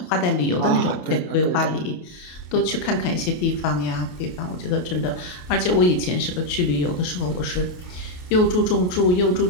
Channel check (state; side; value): late; right; 28 ms